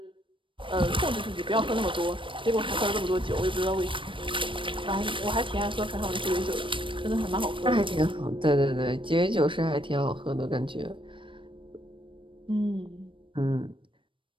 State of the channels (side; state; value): left; late; 0.25 ms